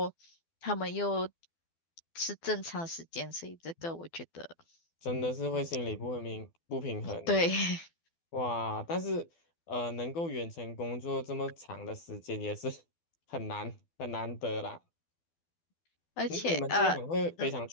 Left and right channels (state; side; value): late; right; 12 ms